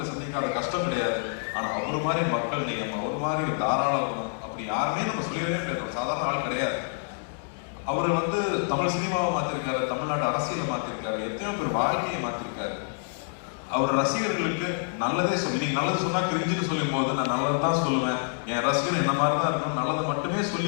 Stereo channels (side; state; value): right; silent; digital silence